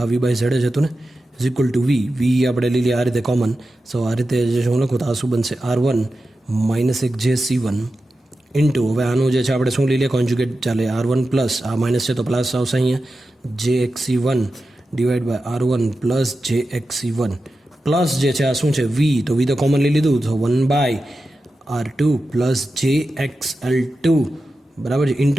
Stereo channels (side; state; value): both; normal; correlation 0.92